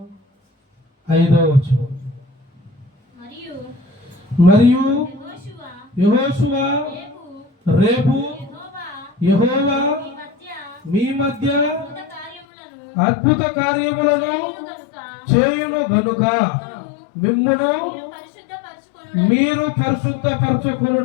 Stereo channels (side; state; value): right; drops out; at 12.5 s